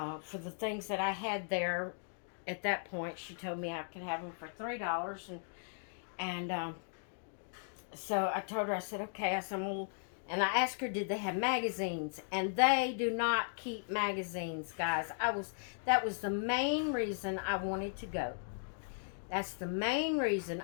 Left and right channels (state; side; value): silent; right; digital silence